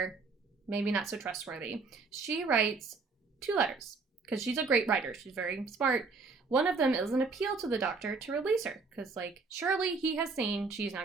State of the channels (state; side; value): quieter; left; 4.3 dB